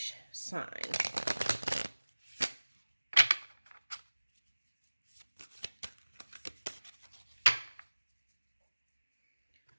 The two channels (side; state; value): both; inverted; correlation -1.00